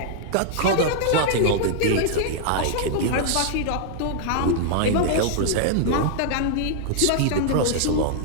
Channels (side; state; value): both; different; correlation -0.01